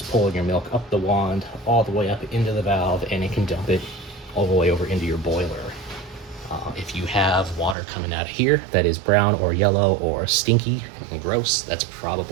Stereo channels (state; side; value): drops out; left; at 7.8 s